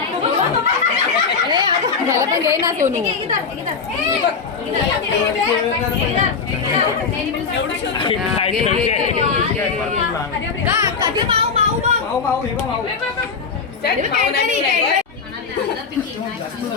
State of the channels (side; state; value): right; quieter; 5.4 dB